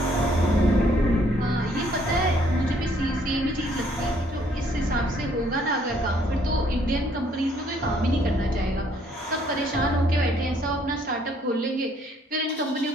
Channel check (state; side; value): normal; both; correlation 0.65